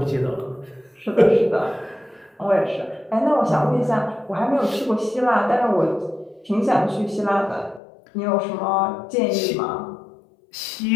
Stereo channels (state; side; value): drops out; right; at 7.8 s